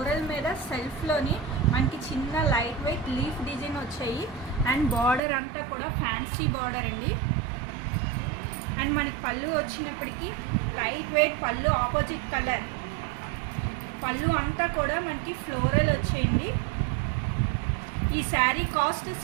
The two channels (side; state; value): left; drops out; at 5.2 s